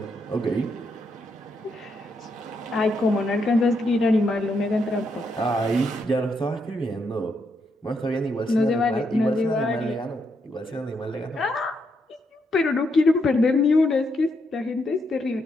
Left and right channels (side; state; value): both; normal; correlation 0.79